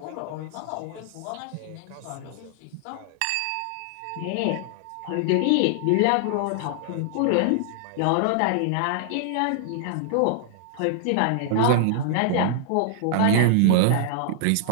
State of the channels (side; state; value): both; different; correlation -0.01